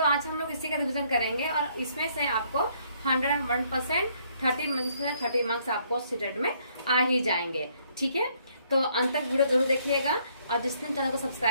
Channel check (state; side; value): inverted; both; correlation -0.67